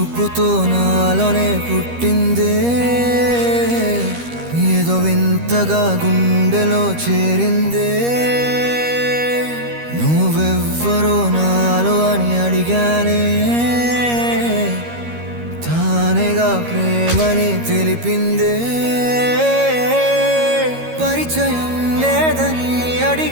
నాలోనే పుట్టిందే, ఏదో వింతగా గుండెలో చేరిందే. నువ్వెవ్వరో నాలో అని అడిగానే, తానేగా ప్రేమని తెలిపిందే. పరిచయం లేదని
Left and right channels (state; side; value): late; left; 13 ms